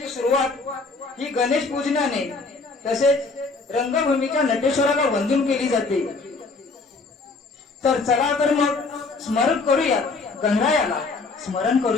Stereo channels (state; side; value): quieter; right; 3.9 dB